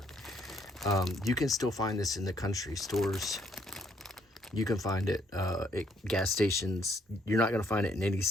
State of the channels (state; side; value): normal; both; correlation 0.69